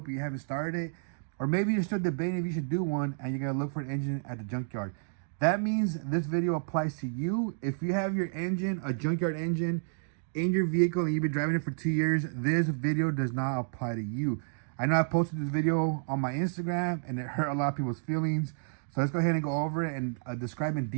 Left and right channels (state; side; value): silent; left; digital silence